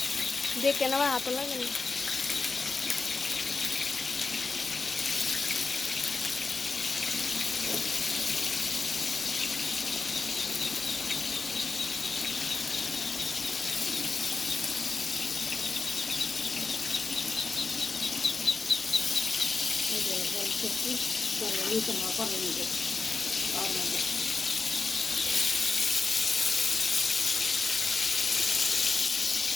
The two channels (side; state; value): right; quieter; 4.2 dB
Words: দেখে নেওয়া হাত লাগে না। করছি নিতে নেওয়া করে নিজে তার মধ্যে